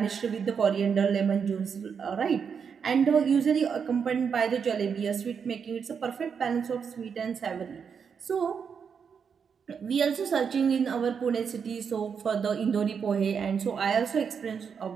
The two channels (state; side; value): quieter; left; 6.6 dB